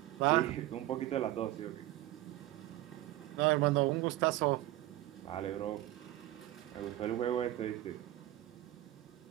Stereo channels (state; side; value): quieter; left; 15.6 dB